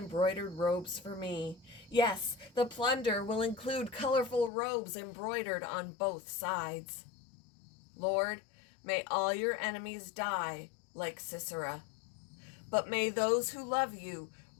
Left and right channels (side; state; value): right; drops out; at 4.5 s